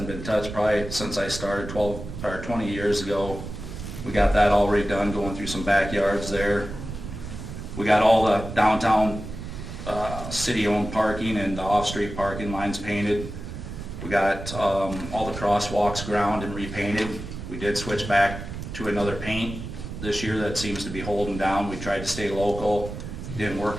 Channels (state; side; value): noise; right; rumble, 9 dB below the sound